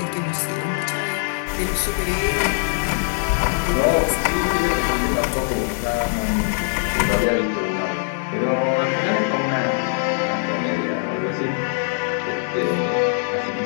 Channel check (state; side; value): silent; right; digital silence